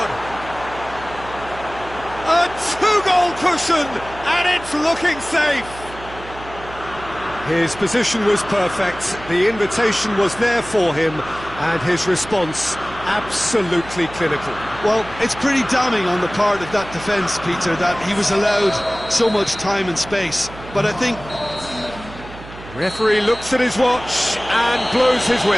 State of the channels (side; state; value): right; noise; hum, 15 dB below the sound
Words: A two-goal cushion, and it's looking safe. His position was perfect, the invitation was there for him, and his response absolutely clinical. Well, it's pretty damning on the part of that defence, Peter, that he was allowed so much time and space. But I think... Referee looks at his watch and blows his